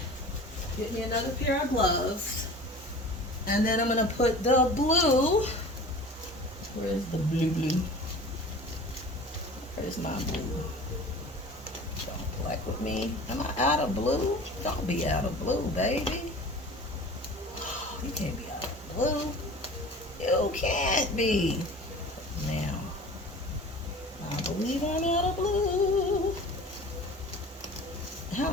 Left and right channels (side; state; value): both; normal; correlation 0.40